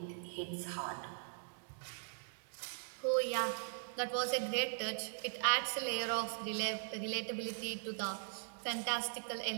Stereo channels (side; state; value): left; silent; digital silence